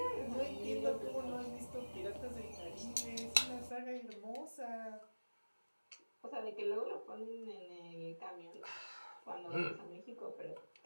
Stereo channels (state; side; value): inverted; both; correlation -1.00